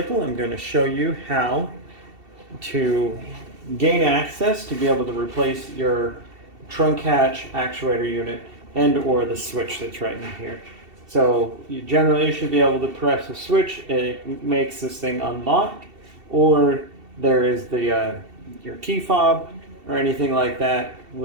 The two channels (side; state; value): left; late; 2.7 ms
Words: I'm going to show you how to gain access to be able to replace your trunk hatch actuator unit and or the switch that's right in here. So you generally should be able to press a switch, it makes this thing unlock, or there is the your key fob or anything like that,